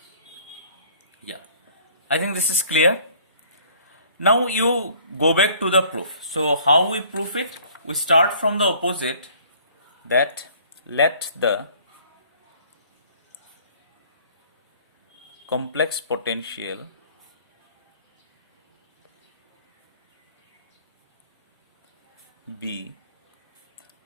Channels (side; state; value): both; inverted; correlation -0.55